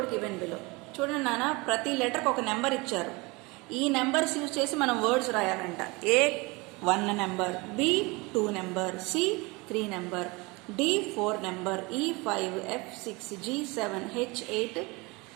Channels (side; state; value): left; quieter; 25.4 dB